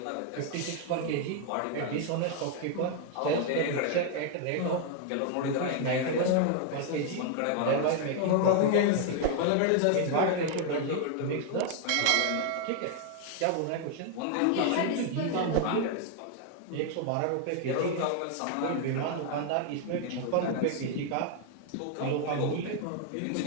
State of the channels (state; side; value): different; both; correlation 0.00